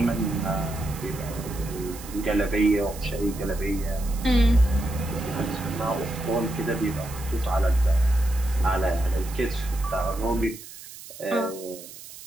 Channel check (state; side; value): noise; right; hiss, 15 dB below the sound